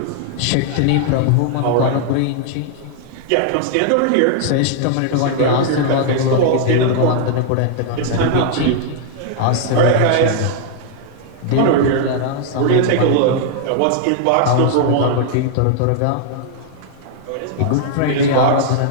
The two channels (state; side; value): different; both; correlation -0.01